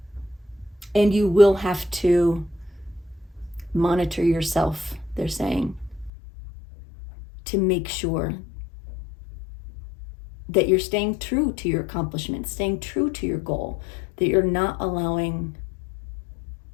And you will have to monitor yourself, they're saying, to make sure that you're staying true to your accomplishments, staying true to your goal, that you're not allowing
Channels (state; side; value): drops out; right; at 6.1 s